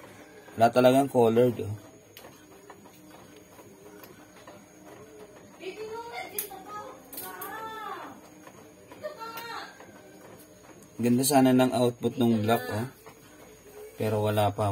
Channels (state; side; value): identical; both; correlation 1.00